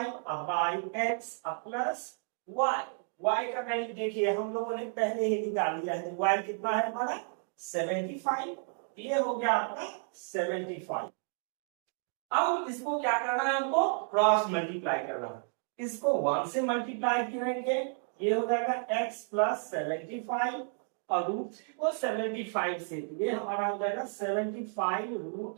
by x plus y। y का वैल्यू देखिए हम लोगों ने पहले ही निकाल लिया है। y कितना है हमारा? 75। ये हो गया आपका 75। अब इसको क्या करना है? हमको क्रॉस मल्टीप्लाई करना है। इसको 1 से मल्टीप्लाई करेंगे, ये हो जाएगा x प्लस 75 और √3 को 75 से, ये हमारा हो जाएगा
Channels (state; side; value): silent; left; 56 dB below the other